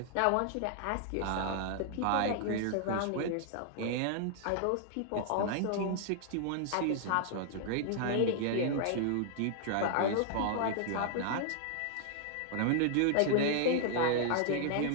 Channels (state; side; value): different; both; correlation -0.01